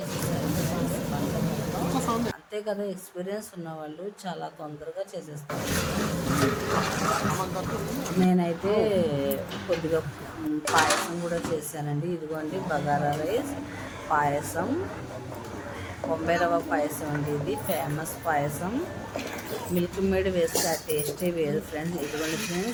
అంతే చెప్తే కదా ఎక్స్పీరియన్స్ ఉన్నవాళ్ళు చాలా తొందరగా చేసేస్తారు. నేనైతే కొద్దిగా పాయసం కూడా చేశానండి. ఇదిగోండి బగారా రైస్, పాయసం, బొంబాయి రవ్వ పాయసం అండి. ఇది ఫేమస్ పాయసం. మిల్క్ మేడ్ వేస్తే ఆ టేస్టే వేరు ఫ్రెండ్స్. ఇదిగోండి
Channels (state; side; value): identical; both; correlation 1.00